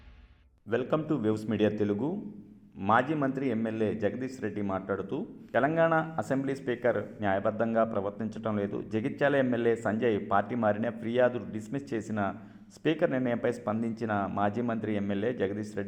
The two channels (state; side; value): identical; both; correlation 1.00